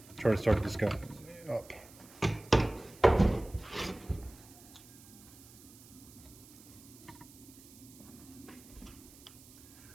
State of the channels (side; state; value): right; noise; hiss, 21 dB below the sound